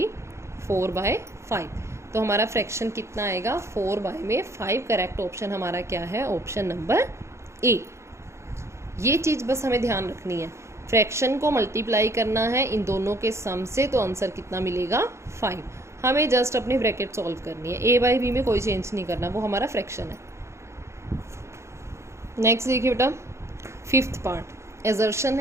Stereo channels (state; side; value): late; left; 0.13 ms